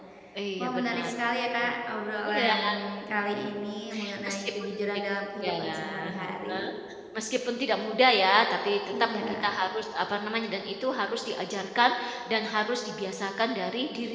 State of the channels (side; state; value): both; identical; correlation 1.00